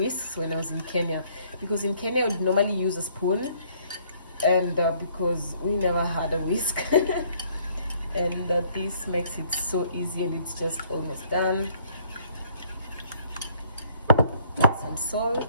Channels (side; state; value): both; inverted; correlation -0.62